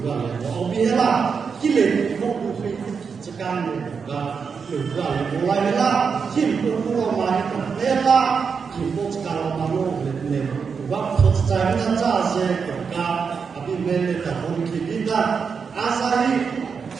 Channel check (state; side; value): quieter; left; 5.8 dB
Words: oh biarlah Kile ko ku fi tsakan ga ga mulai la kin ko ko ma ni ko la kin ko tsakan ma no ne wa ko tsakan na cha se ga abi me ne ta ko ki dinda asai